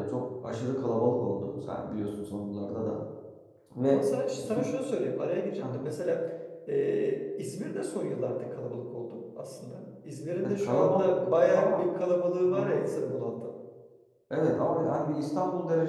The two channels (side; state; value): both; identical; correlation 1.00